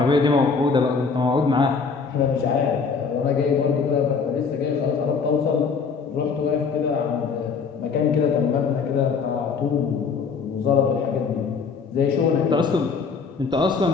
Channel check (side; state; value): right; quieter; 5.4 dB